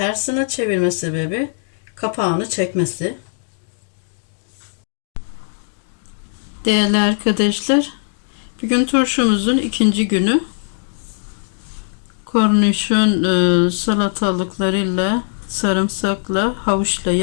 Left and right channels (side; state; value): right; silent; digital silence